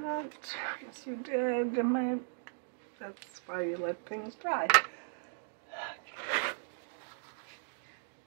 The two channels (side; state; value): left; silent; digital silence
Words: Yes, you did. That's why you let things dry.